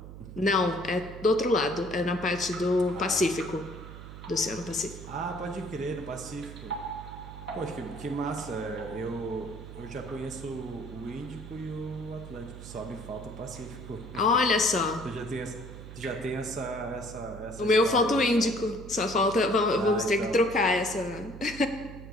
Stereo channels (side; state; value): right; noise; hum, 13 dB below the sound